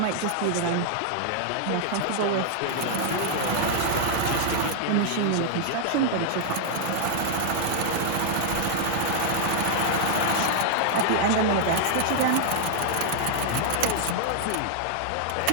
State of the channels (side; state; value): both; different; correlation -0.01